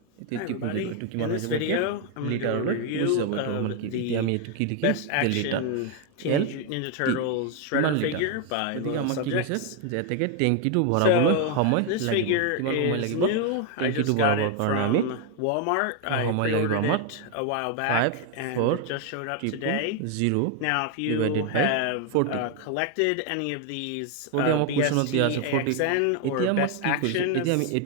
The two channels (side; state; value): both; different; correlation 0.01